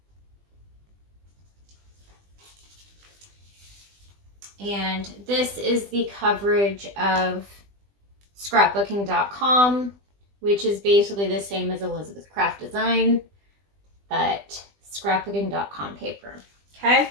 And this is the coverage of scrapbooking.com, which is basically the same as Elizabeth Craft Design, but scrapbooking.com paper. Okay.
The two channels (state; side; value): late; left; 20 ms